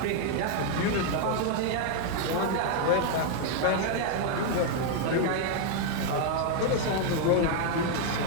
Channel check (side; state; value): both; different; correlation 0.00